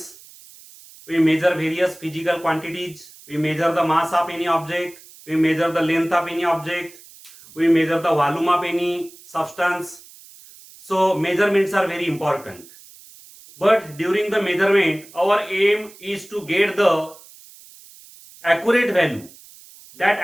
We measure various physical quantities. We measure the mass of any object. We measure the length of any object. We measure the volume of any substance. So measurements are very important. But during the measurement, our aim is to get the accurate value. That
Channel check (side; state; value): right; noise; hiss, 22 dB below the sound